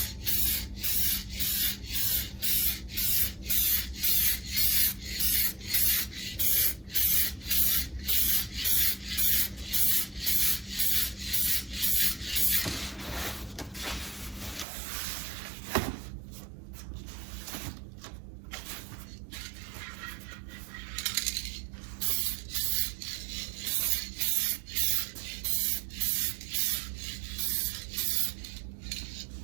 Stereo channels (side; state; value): left; drops out; at 14.7 s